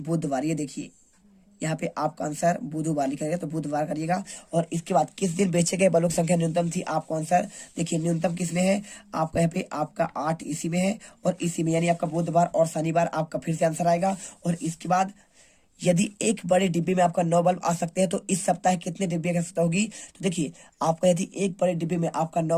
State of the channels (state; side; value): identical; both; correlation 1.00